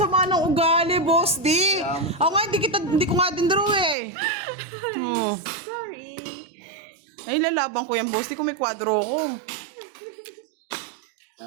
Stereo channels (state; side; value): drops out; left; at 4.0 s